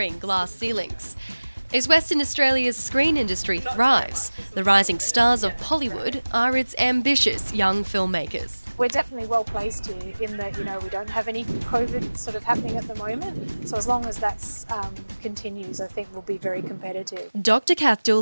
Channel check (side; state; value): both; inverted; correlation -1.00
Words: glass ceilings. As Western Australia's screen industry thrives, the rising stars of Pollywood are its ambitious young filmmakers. We're definitely well placed here in that, we don't have any COVID sort of happening at the moment. So as long as that continues, I think we'll be very competitive. Dr. Kath